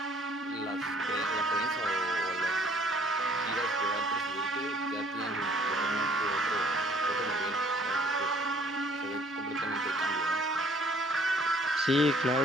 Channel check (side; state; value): both; normal; correlation 0.58